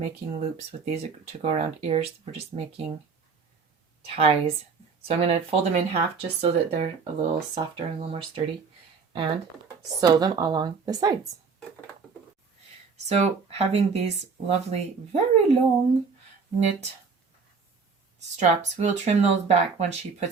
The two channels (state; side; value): quieter; left; 5.3 dB